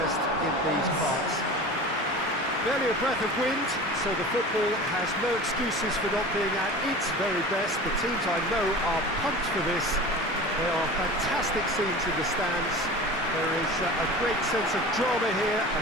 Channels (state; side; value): normal; both; correlation 0.35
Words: in these parts. Barely a breath of wind, so the football has no excuses for not being at its very best. The teams I know are pumped for this. There are fantastic scenes in the stands. There is a great sense of drama here,